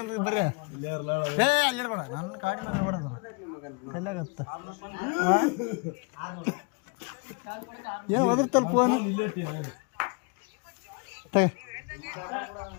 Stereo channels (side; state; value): right; quieter; 32.1 dB